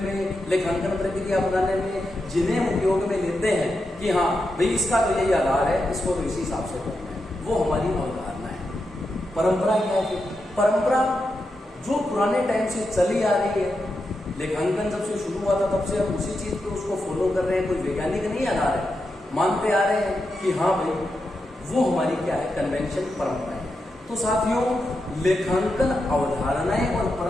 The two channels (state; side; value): normal; both; correlation 0.87